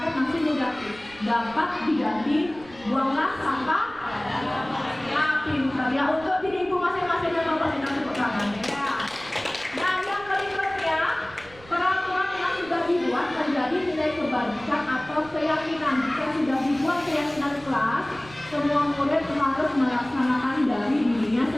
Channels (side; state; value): right; noise; rumble, 21 dB below the sound